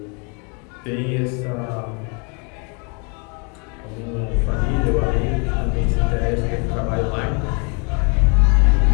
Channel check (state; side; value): quieter; right; 35.3 dB